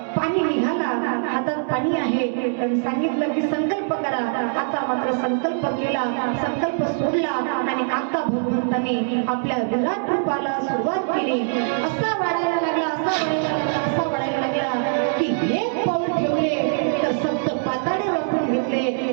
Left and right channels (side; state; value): left; silent; digital silence